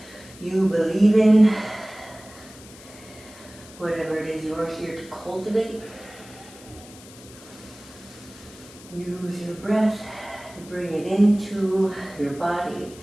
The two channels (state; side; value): noise; left; hiss, 20 dB below the sound